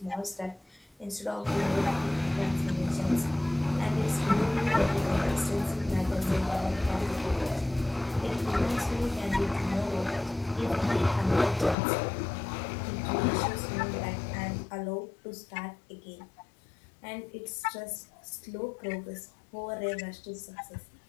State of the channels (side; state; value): right; drops out; at 11.8 s